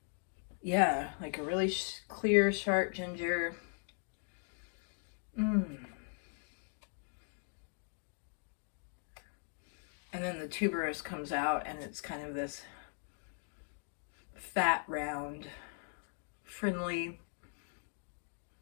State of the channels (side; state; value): right; silent; 52 dB below the other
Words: Yeah, like a really clear, sharp ginger. And then the tuberose comes out, and it's kind of this fat, round, friendly,